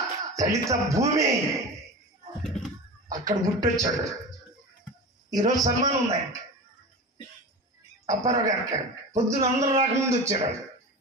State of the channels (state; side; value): normal; both; correlation 0.30